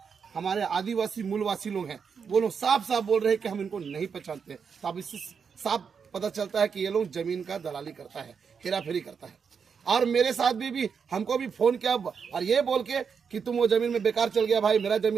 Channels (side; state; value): left; quieter; 6.3 dB